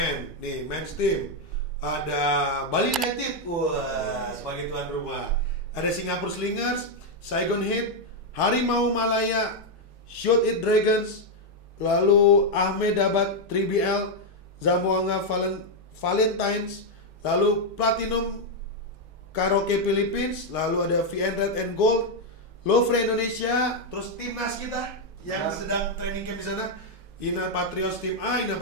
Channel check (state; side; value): normal; both; correlation 0.01